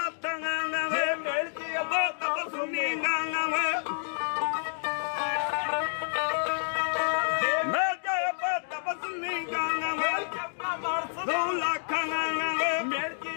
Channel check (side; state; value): right; silent; digital silence